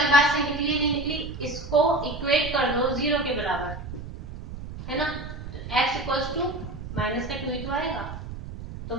बात सही निकली नहीं निकली, इसको इक्वेट कर दो जीरो के बराबर, है ना। x इक्वल्स टू माइनस का 2 ही तो आएगा, तो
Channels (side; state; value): right; noise; rumble, 10 dB below the sound